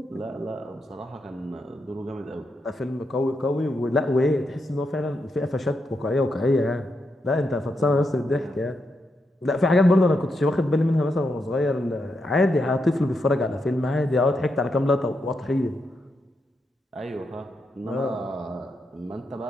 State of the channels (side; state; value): both; normal; correlation 0.83